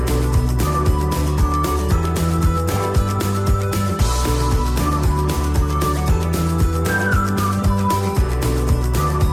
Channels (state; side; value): identical; both; correlation 1.00